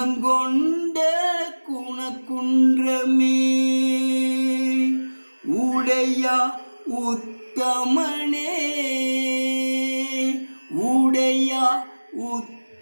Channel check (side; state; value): both; inverted; correlation -1.00